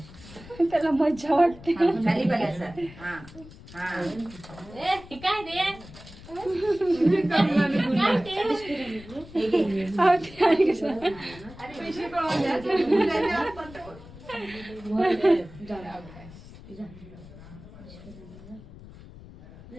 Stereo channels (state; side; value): noise; left; rumble, 18 dB below the sound